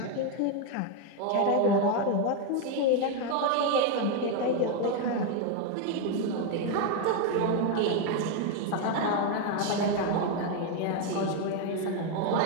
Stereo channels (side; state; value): both; different; correlation 0.02